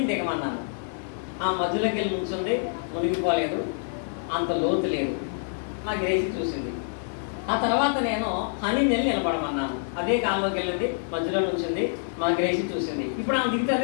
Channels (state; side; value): silent; right; 56 dB below the other